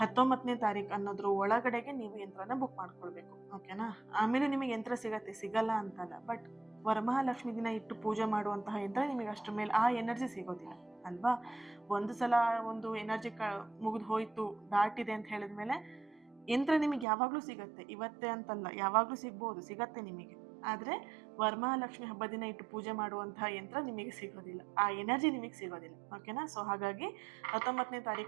ತಾರೀಕು ಅನ್ನೋದ್ರ ಒಳಗಡೆಗೆ ನೀವು ಯಂತ್ರನ ಬುಕ್ ಮಾಡ್ಕೊಳ್ಬೇಕು. ಓಕೆನಾ. ಆಮೇಲೆ ನಿಮಗೆ ಯಂತ್ರ ಸಿಗಲ್ಲ ಅಂತಲ್ಲ, ಬಟ್ ವರಮಹಾಲಕ್ಷ್ಮಿ ದಿನ ಇಟ್ಟು ಪೂಜೆ ಮಾಡುವಂತಹ ಯಂತ್ರ ನಿಮಗೆ ಅಷ್ಟರ ಮೇಲೆ ಆ ಎನರ್ಜಿ ಸಿಗೋದಿಲ್ಲ ಅಲ್ವಾ. ಒಂದು ಸಲ ಒಂದು ಎನರ್ಜಿ ಮುಗಿದು ಹೋಯ್ತು, ದಾಟಿದೆ ಅಂತ ಹೇಳಿದ್ಮೇಲೆ ಯಂತ್ರ ನಿಮಗೆ ಯಾವಾಗಲೂ ಸಿಗತ್ತೆ. ಇವತ್ತೇ ಅಂತಲ್ಲ, ಯಾವಾಗಲೂ ಸಿಗತ್ತೆ ನಿಮಗೆ. ಆದರೆ ವರಮಹಾಲಕ್ಷ್ಮಿ ಹಬ್ಬ ದಿನ ಇಟ್ಟು ಪೂಜೆ ಮಾಡುವಂತಹ ಯಂತ್ರ ನಿಮಗೆ ಸಿಗೋದಿಲ್ಲ, ಆ ಎನರ್ಜಿ ನಿಮಗೆ ಸಿಗೋದಿಲ್ಲ. ಓಕೆನಾ. ಸೊ ಹಾಗಾಗಿ 19ನೇ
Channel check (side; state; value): left; drops out; at 17.1 s